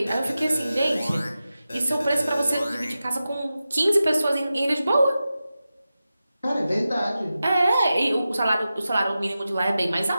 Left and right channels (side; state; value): both; inverted; correlation -0.93